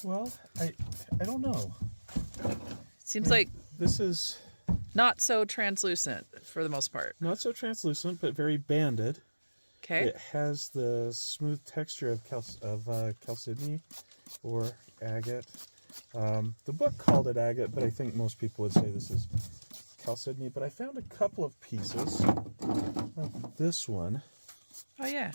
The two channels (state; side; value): inverted; both; correlation -1.00